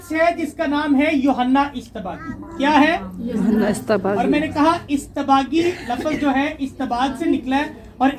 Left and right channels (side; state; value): both; identical; correlation 1.00